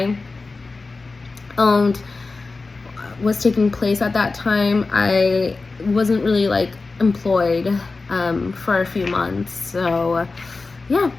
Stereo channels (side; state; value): right; quieter; 3.8 dB